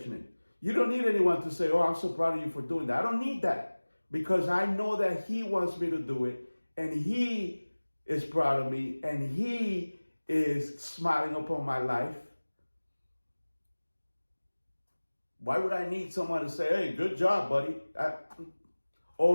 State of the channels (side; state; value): both; inverted; correlation -1.00